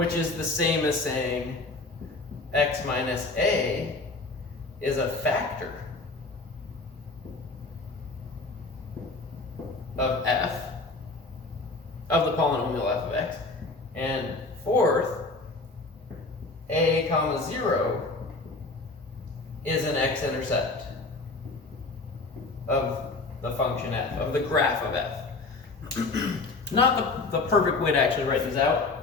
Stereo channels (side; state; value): right; quieter; 3.5 dB